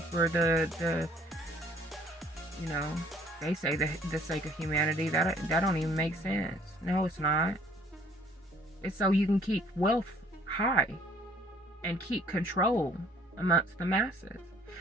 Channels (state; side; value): normal; both; correlation 0.58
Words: the you know, they say the sake of humanity. That don't even make sense. No, it's not. It's so you can keep wealth high and keep control amongst the masses,